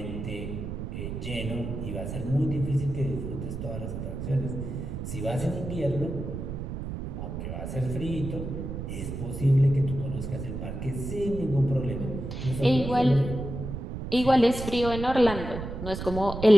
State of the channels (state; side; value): noise; right; rumble, 6 dB below the sound